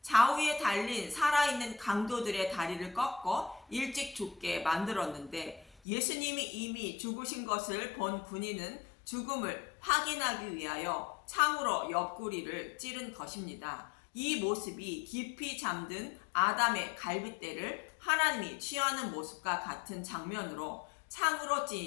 좌우에 달린 살아있는 강도들의 다리를 꺾어 일찍 죽게 만들었는데 예수님이 이미 죽으신 것을 본 군인은 죽음을 확인하기 위하여 창으로 옆구리를 찌른 것입니다. 이 모습이 깊이 잠든 아담의 갈빗대를 하나님이 취하는 모습과 같은 장면으로 창으로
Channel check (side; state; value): right; drops out; at 5.8 s